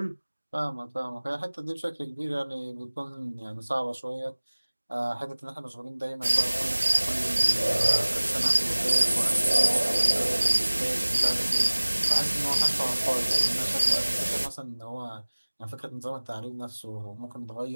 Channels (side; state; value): both; inverted; correlation -1.00